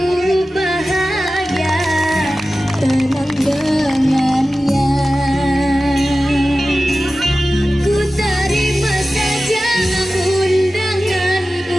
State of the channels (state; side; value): normal; both; correlation 0.95